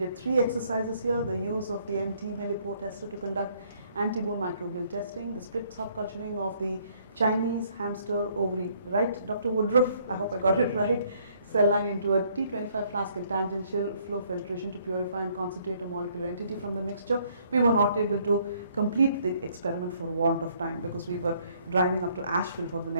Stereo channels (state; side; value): inverted; both; correlation -0.65